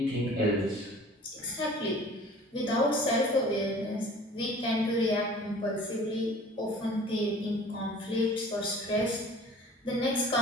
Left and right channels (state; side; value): normal; both; correlation 0.47